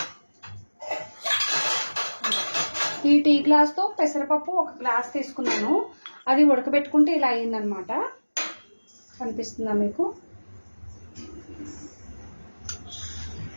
ఈ టీ గ్లాస్ తో పెసరపప్పు ఒక గ్లాస్ తీసుకున్నాను. అది ఉడకబెట్టుకుంటే ఇలా అయిందనమాట. కనిపిస్తుందా మీకు?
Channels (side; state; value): both; inverted; correlation -1.00